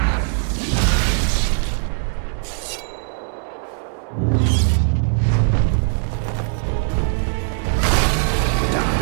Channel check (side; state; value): left; silent; 66 dB below the other